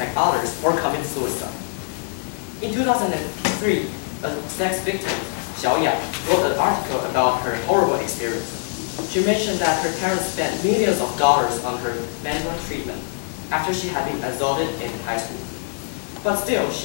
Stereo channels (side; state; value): right; silent; 63 dB below the other